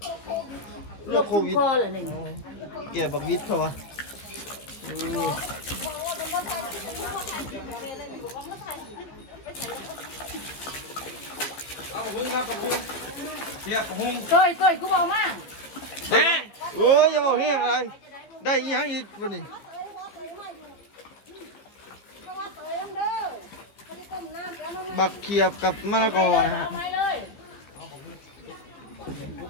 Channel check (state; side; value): late; right; 15 ms